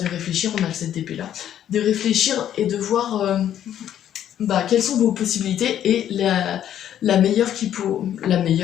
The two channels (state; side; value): quieter; right; 10.6 dB